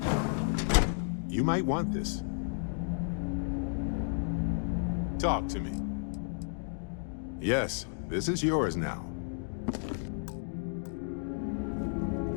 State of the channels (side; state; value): right; silent; digital silence